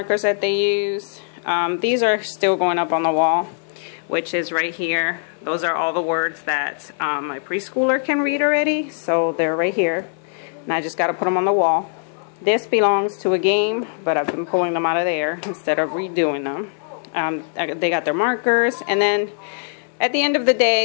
that they use. These are still going up on the wall, which is right here. Those are all the words that my preschooler can read already, so they're right here. And I just got to put them on the wall. This belongs to a game, but I've been pulling them out of there instead of redoing them. They got their markers, and then at the end of the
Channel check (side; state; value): right; silent; 62 dB below the other